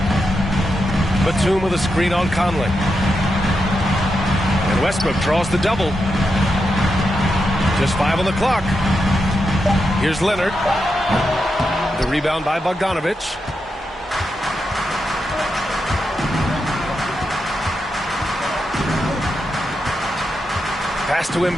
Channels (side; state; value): both; normal; correlation 0.86